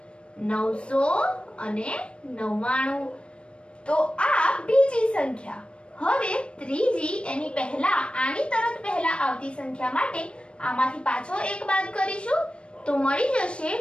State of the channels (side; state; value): right; late; 0.058 ms